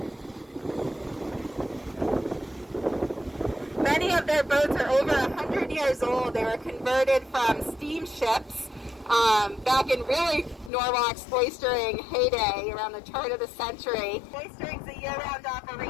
Many of their boats are over 100 years old. They were converted from steamships back in really Norwalk's oystering heyday around the turn of the century. Oystering's a year-round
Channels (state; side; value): drops out; right; at 10.7 s